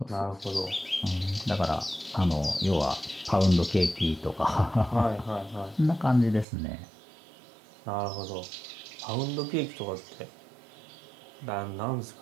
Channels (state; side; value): drops out; left; at 6.5 s